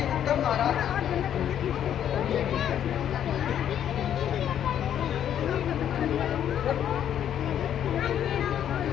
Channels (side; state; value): right; quieter; 10.0 dB